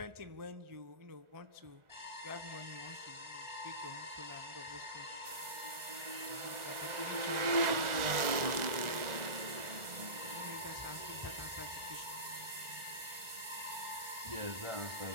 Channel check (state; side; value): late; left; 1.4 ms